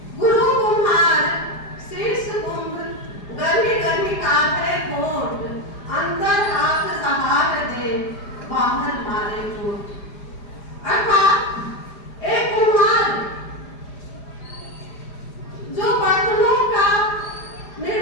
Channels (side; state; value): right; late; 4.9 ms